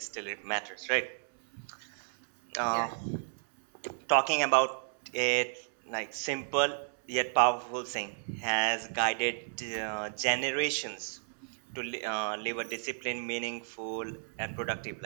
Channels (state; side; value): silent; left; 56 dB below the other